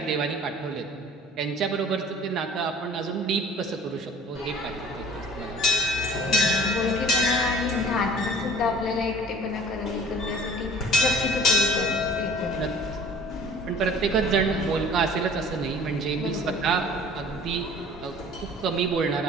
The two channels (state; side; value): normal; both; correlation 0.48